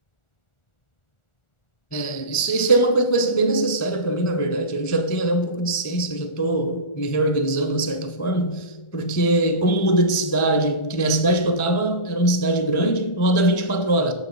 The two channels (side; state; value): right; late; 1.4 ms